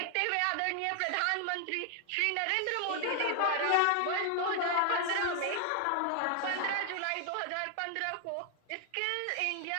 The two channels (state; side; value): different; both; correlation 0.00